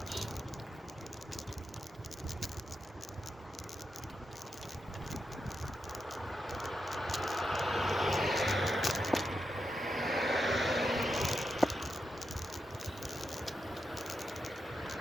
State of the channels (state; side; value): normal; both; correlation 0.87